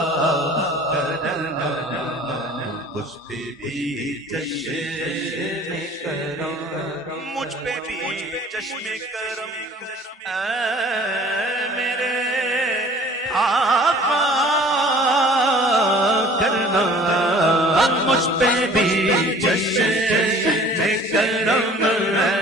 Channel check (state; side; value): normal; both; correlation 0.49